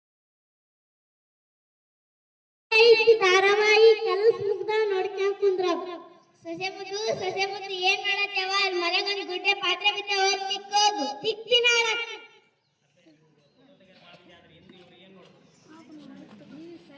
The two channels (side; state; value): both; identical; correlation 1.00